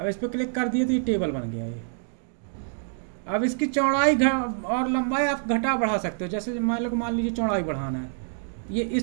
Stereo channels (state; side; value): silent; left; digital silence